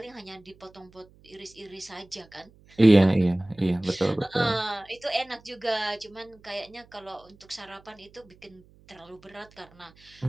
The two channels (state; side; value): noise; right; hum, 27 dB below the sound